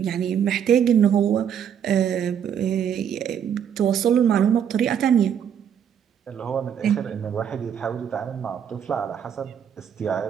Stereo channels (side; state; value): left; quieter; 8.5 dB